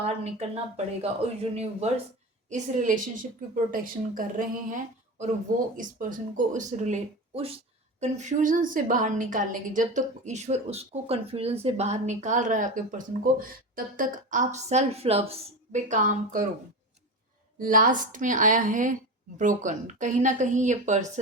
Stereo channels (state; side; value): normal; both; correlation 0.24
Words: निकलना पड़ेगा और यूनिवर्स इस रिलेशनशिप की प्रोटेक्शन कर रहे हैं और वो इस पर्सन को उस कन्फ्यूजन से बाहर निकालने की, जब तक ईश्वर उसको कन्फ्यूजन से बाहर निकाल रहा है आपके पर्सन को, तब तक आप सेल्फ लव पे काम करो। लास्ट में आया है ब्रोकन। कहीं ना कहीं ये